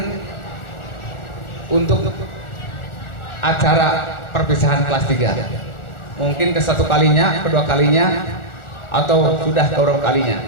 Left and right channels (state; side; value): late; right; 1.4 ms